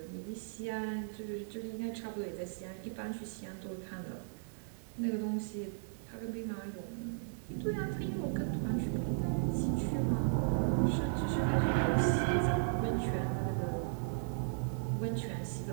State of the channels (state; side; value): silent; left; digital silence